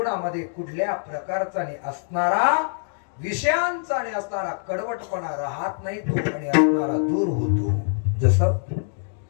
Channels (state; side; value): silent; right; digital silence